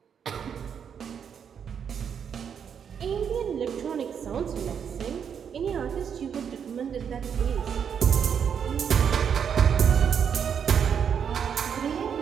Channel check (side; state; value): left; quieter; 7.6 dB